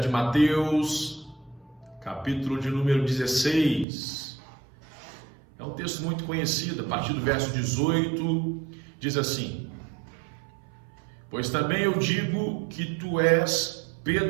de Mateus, capítulo de número 16. É um texto muito conhecido, a partir do verso 18, diz assim: Pois também eu digo que tu és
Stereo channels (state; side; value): drops out; left; at 3.9 s